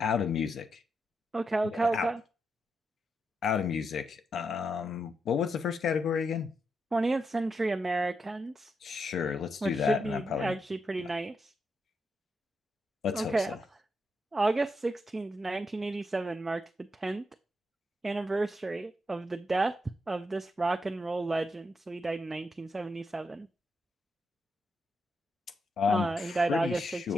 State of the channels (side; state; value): both; normal; correlation 0.83